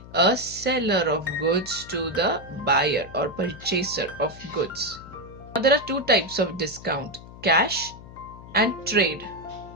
a seller of goods to the buyer or purchaser of goods. Now there are two types of discount, cash and trade.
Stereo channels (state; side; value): noise; left; hum, 17 dB below the sound